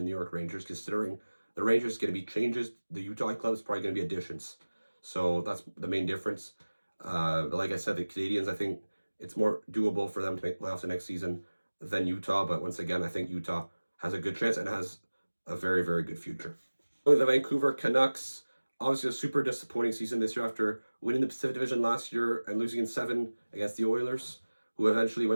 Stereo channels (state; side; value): inverted; both; correlation -1.00